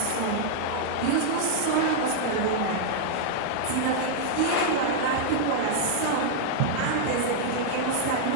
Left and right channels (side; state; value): both; different; correlation -0.01